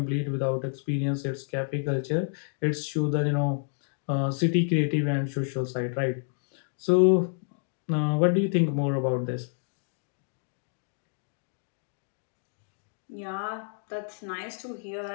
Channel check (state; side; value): silent; right; digital silence